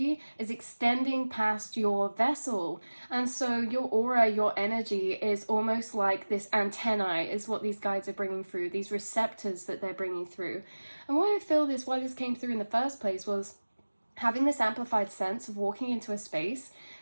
is extending past your vessel. And so your aura, your energy is almost like this antennae is what these guides are bringing through, these receptors that they're bringing through. And why I feel this, why this came through in the first place was having this amplified sense of walking into a space.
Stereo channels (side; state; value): both; inverted; correlation -1.00